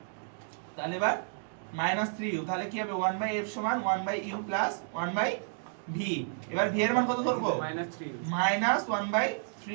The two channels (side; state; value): left; silent; 57 dB below the other